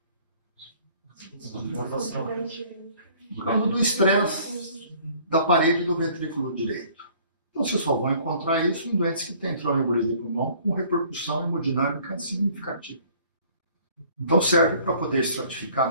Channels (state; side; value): inverted; both; correlation -0.55